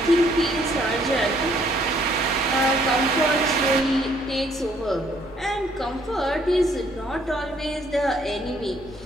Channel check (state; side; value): normal; both; correlation 0.65